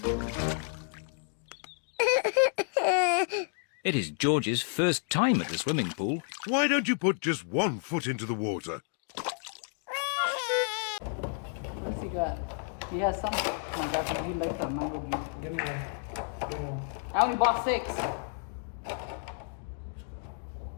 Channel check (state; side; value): silent; right; 57 dB below the other